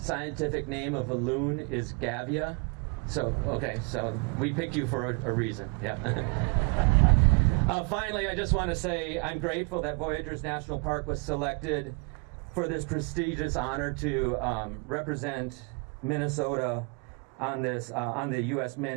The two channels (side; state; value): left; quieter; 33.8 dB